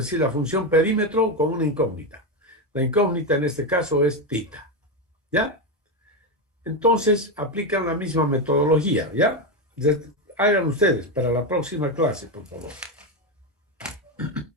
la función perímetro con una incógnita. La incógnita en este caso es tita. ¿Ya? Entonces aplican la misma metodología. ¿Ya? Hagan ustedes para la próxima clase, por favor.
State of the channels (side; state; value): both; normal; correlation 0.11